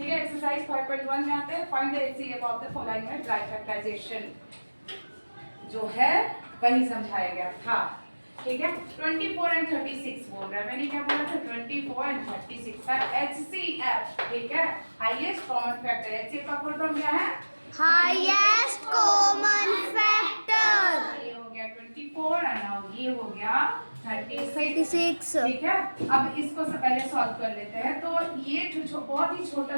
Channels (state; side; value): inverted; both; correlation -1.00